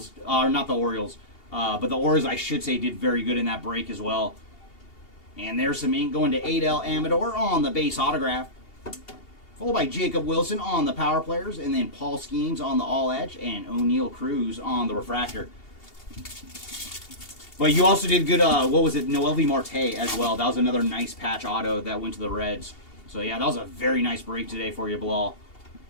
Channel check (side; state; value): right; late; 2.8 ms